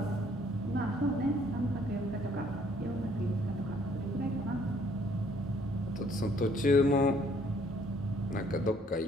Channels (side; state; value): both; normal; correlation 0.63